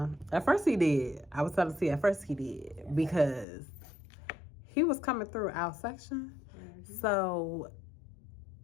At first he did. I was telling you, at first he did. Because he was coming through our section. Mm-hmm. So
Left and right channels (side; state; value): right; drops out; at 3.5 s